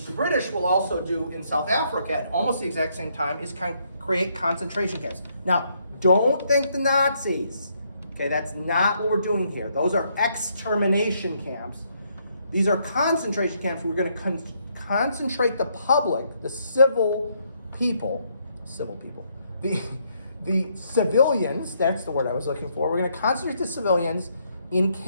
the British will also do in South Africa at almost the exact same time, is create concentration camps. Now, don't think the Nazis. Okay, that's not what we're doing here. Those are extermination camps. These are concentration camps. We're going to concentrate the public, the civil people, the civilians, that's the word I was looking for. We're going to concentrate the civilians in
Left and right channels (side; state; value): both; inverted; correlation -0.73